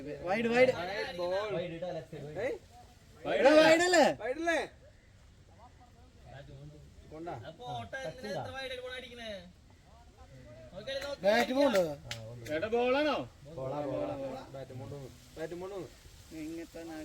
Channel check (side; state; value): both; identical; correlation 1.00